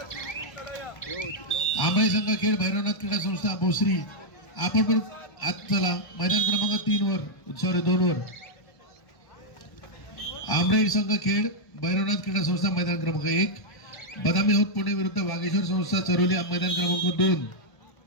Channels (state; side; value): late; right; 1.1 ms